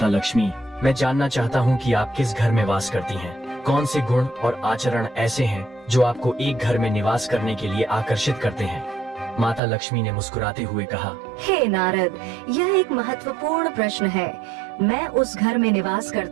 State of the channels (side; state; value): left; drops out; at 9.6 s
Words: लक्ष्मी, मैं जानना चाहता हूँ कि आप किस घर में वास करती हैं। कौन से गुण और आचरण ऐसे हैं जो आपको एक घर में निवास करने के लिए आकर्षित करते हैं। माता लक्ष्मी ने मुस्कुराते हुए कहा, हे नारद, यह एक महत्वपूर्ण प्रश्न है। मैं उस घर में निवास